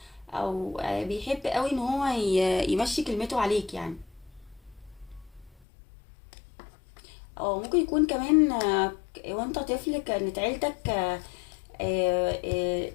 او بيحب قوي ان هو يمشي كلمته عليك يعني. او ممكن يكون كمان وانت طفل كانت عيلتك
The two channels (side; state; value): right; drops out; at 5.5 s